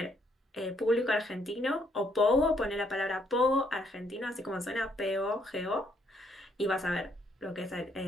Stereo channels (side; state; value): both; normal; correlation 0.70